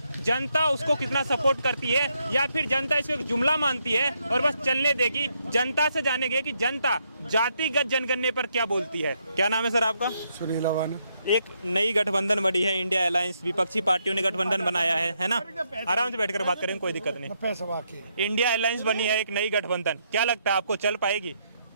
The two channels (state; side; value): inverted; both; correlation -0.77